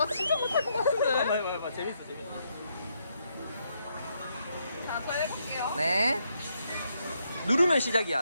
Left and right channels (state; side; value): inverted; both; correlation -0.77